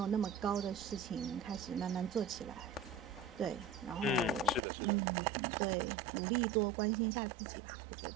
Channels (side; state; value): left; drops out; at 4.6 s